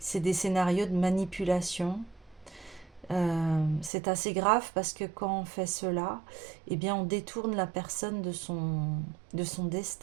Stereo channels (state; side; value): drops out; left; at 3.9 s